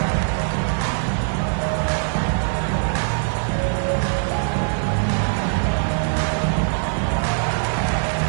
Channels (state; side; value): silent; left; 64 dB below the other